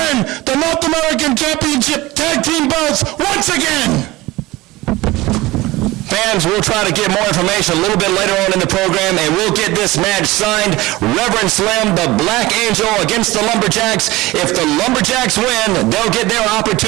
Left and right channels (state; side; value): quieter; left; 19.2 dB